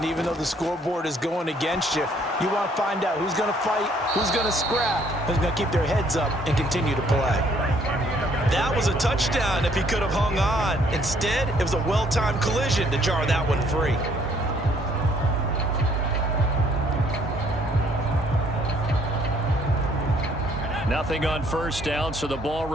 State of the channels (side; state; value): both; normal; correlation 0.64